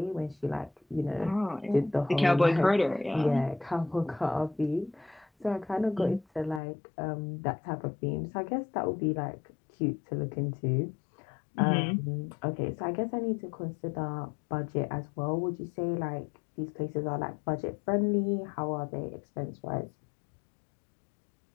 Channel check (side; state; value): right; drops out; at 6.6 s